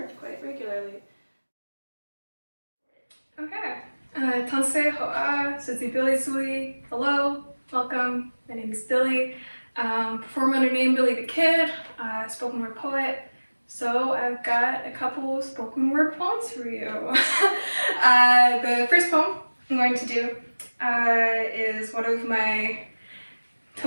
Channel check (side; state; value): both; inverted; correlation -1.00